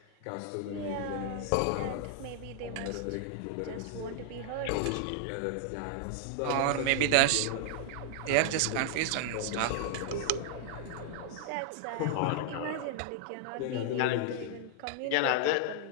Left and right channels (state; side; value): different; both; correlation 0.00